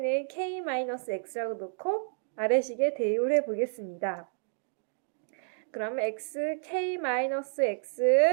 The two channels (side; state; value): left; silent; digital silence